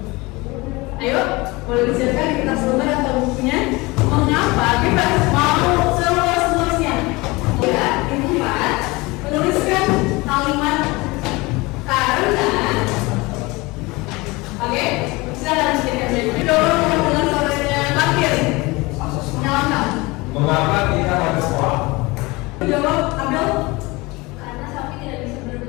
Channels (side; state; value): right; quieter; 23.4 dB